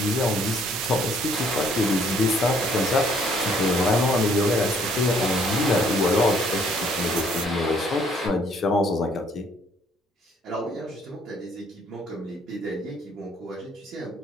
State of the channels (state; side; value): normal; both; correlation 0.63